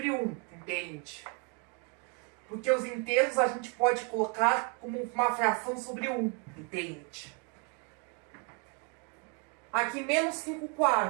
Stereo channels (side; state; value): left; quieter; 36.1 dB